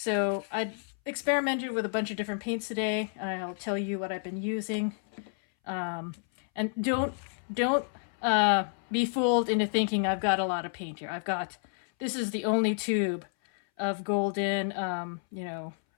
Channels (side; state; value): right; silent; 58 dB below the other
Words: I experimented with a bunch of different paints today. I'll tell you what I've been using. And don't be fooled into thinking I've got a lot of paint here. This is the only tube of golden,